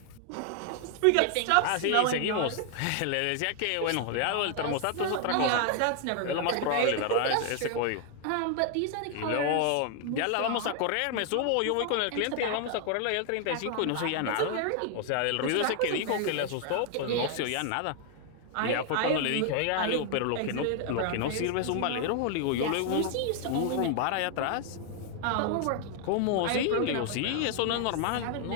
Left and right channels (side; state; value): both; different; correlation 0.00